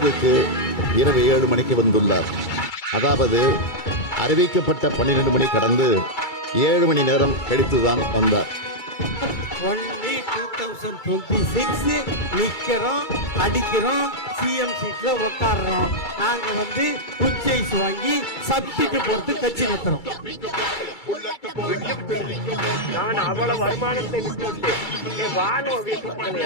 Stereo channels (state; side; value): late; right; 2.3 ms